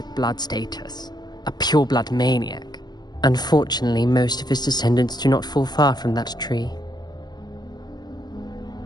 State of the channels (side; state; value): right; late; 0.20 ms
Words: blood status, a pure-blood maniac. Unfortunately, most of his descendants do not fall far from that tree.